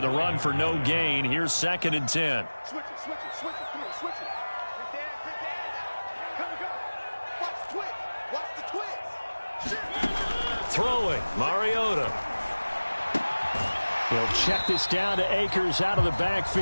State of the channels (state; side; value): inverted; both; correlation -1.00